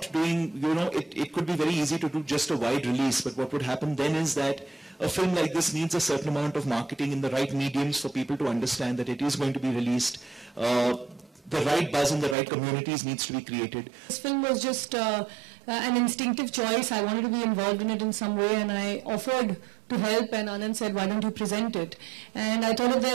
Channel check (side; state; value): left; drops out; at 12.4 s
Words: doing, it could be very easy to do just a wide release, but what would happen then is that a film like this needs a certain amount of marketing in the right mediums for people to understand that it is going to be released. The right buzz in the right communities needs to be created. This film was just an instinctive choice. I wanted to be involved in it in some way, and I offered to help, and Anand said, why don't you present it? And I thought if